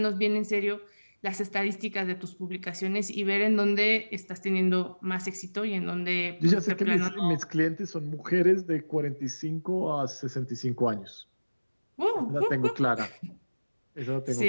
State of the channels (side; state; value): both; inverted; correlation -1.00